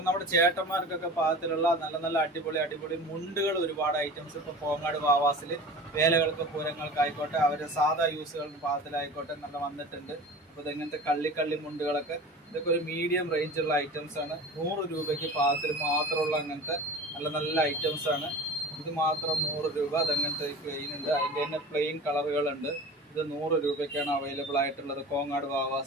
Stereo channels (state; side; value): normal; both; correlation 0.36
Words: നമ്മുടെ ചേട്ടന്മാർക്കൊക്കെ പാകത്തിലുള്ള നല്ല നല്ല അടിപൊളി മുണ്ടുകൾ ഒരുപാട് ഐറ്റംസ് ഇപ്പോൾ കോങ്ങാട് വാവാസിൽ വേലകൾക്ക് പൂരങ്ങൾക്കായിക്കോട്ടെ അവരുടെ സാധാ യൂസുകളുടെ പാകത്തിലായിക്കോട്ടെ നല്ല വന്നിട്ടുണ്ട്. അപ്പോൾ ഇതെങ്ങനത്തെ കള്ളി മുണ്ടുകളൊക്കെ ഇതൊക്കെ ഒരു മീഡിയം റേഞ്ചുള്ള ഐറ്റംസ് ആണ്. 100 രൂപയ്ക്ക് പാകത്തിൽ മാത്രമുള്ള അങ്ങനത്തെ നല്ല നല്ല ഐറ്റംസ് ആണ്. ഇത് മാത്രം 100 രൂപ. അതങ്ങനത്തെ പ്ലെയിൻ ഉണ്ട്, അതിൻ്റെ തന്നെ പ്ലെയിൻ കളറുകളുണ്ട്. ഇത് 100 രൂപയ്ക്കാണ് അവൈലബിൾ ആയിട്ടുള്ളത് കോങ്ങാട്